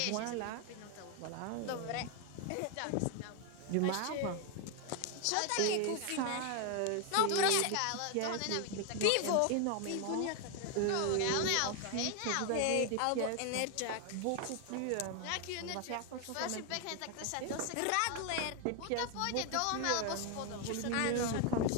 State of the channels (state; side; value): different; both; correlation 0.01